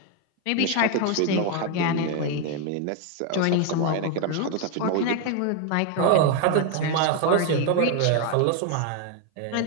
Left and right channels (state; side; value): different; both; correlation 0.01